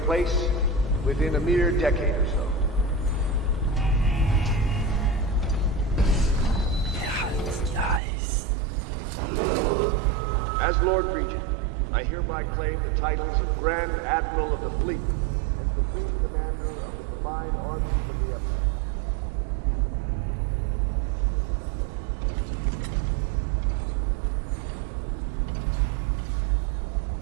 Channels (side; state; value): left; drops out; at 8.0 s